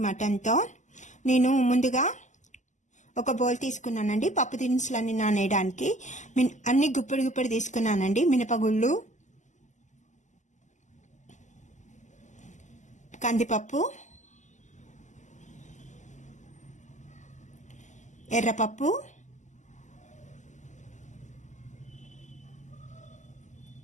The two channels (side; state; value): right; late; 0.35 ms